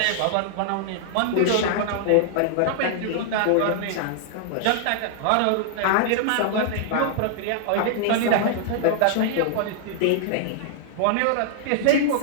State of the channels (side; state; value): both; different; correlation -0.01